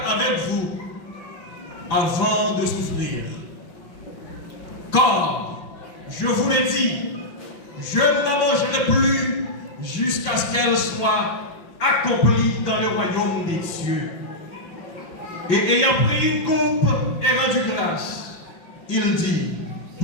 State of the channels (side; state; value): right; late; 5.5 ms